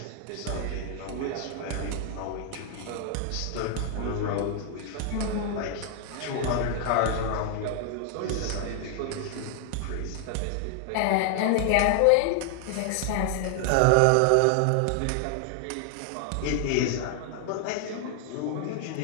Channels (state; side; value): different; both; correlation 0.00